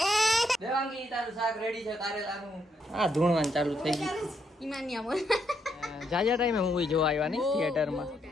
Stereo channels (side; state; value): both; normal; correlation 0.77